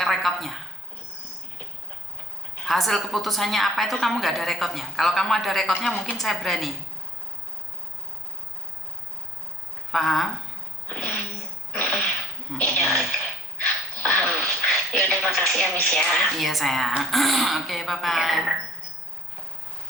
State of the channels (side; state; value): both; normal; correlation 0.53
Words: rekodnya. Hasil keputusannya apa itu kamu nggak ada rekodnya. Kalau kamu ada rekodnya mungkin saya berani. Paham? Iya, paham. Ya udah, makasih ya Miss ya. Iya sayang. Oke, bye-bye.